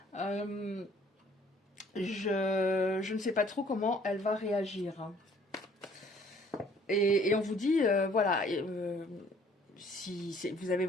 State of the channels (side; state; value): both; normal; correlation 0.58